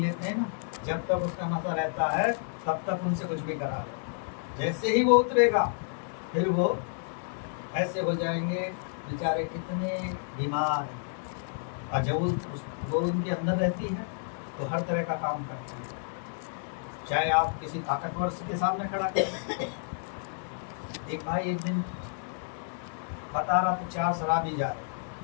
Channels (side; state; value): right; silent; 58 dB below the other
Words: हैं ना, जब तक उसका नशा रहता है तब तक उनसे कुछ भी करा लो। जैसे ही वो उतरेगा फिर वो ऐसे हो जाएंगे बेचारे कितने बीमार हैं। और जब वो उनके अंदर रहती है तो हर तरह का काम करती है, चाहे आप किसी ताकतवर के सामने खड़ा करें। एक भाई एक दिन बता रहा था 4 शराबी जा रहे,